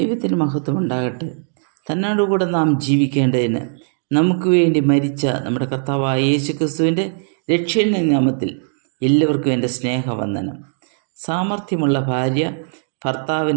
മഹത്വം ഉണ്ടാകട്ടെ. തന്നോടുകൂടെ നാം ജീവിക്കേണ്ടതിന് നമുക്ക് വേണ്ടി മരിച്ച നമ്മുടെ കർത്താവായ യേശുക്രിസ്തുവിൻ്റെ രക്ഷയുടെ നാമത്തിൽ എല്ലാവർക്കും എൻ്റെ സ്നേഹവന്ദനം. സാമർഥ്യമുള്ള ഭാര്യ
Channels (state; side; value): silent; left; digital silence